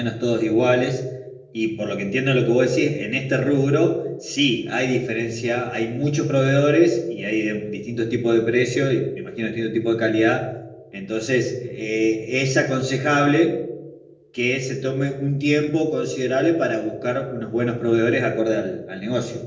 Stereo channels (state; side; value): identical; both; correlation 1.00